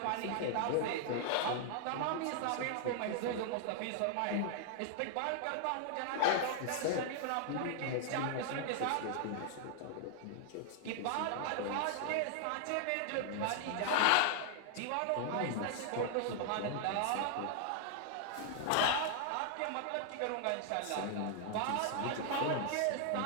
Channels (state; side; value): different; both; correlation 0.00